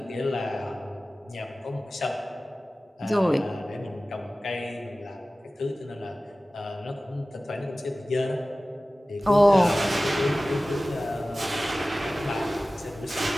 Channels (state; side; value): normal; both; correlation 0.97